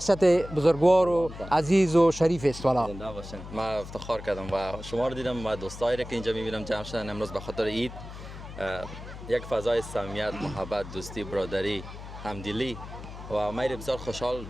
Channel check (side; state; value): left; noise; hum, 12 dB below the sound